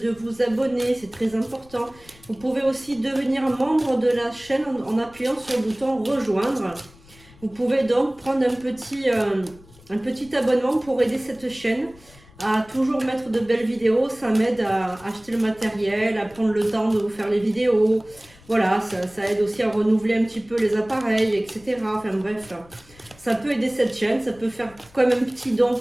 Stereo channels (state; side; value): noise; left; rumble, 25 dB below the sound